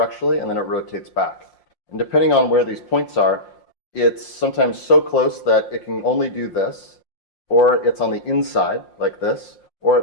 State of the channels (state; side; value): late; right; 5.6 ms